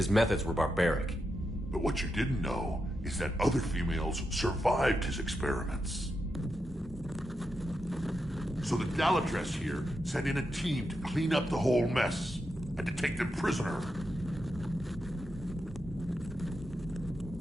methods were barbaric. But what you didn't know is that other females survived his experiments. So the Dalatras here sent in a team to clean up the whole mess, and to take them prisoner.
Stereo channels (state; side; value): normal; both; correlation 0.86